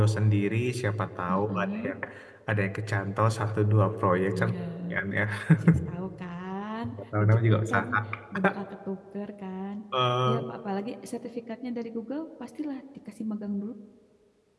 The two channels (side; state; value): both; identical; correlation 1.00